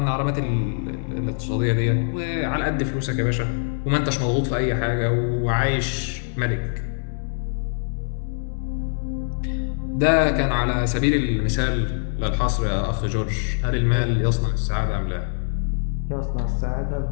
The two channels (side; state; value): right; silent; digital silence